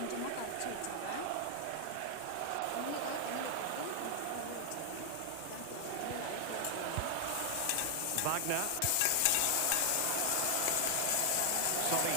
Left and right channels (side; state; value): both; different; correlation 0.00